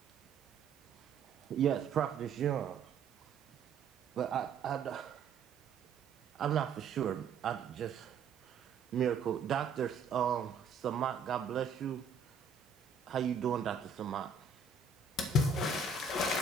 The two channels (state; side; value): quieter; left; 4.9 dB